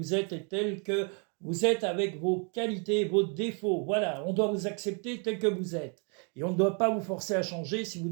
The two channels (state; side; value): quieter; left; 38.1 dB